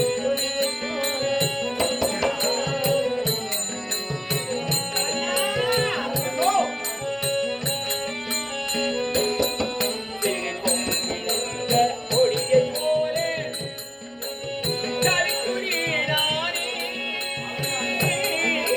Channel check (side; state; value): both; identical; correlation 1.00